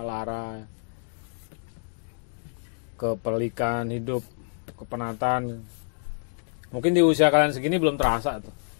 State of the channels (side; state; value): right; silent; digital silence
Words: lara, kepelikan hidup, kepenatan. Mungkin di usia kalian segini belum terasa tuh.